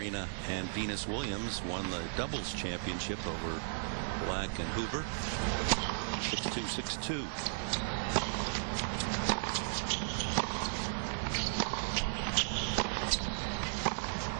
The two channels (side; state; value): left; silent; digital silence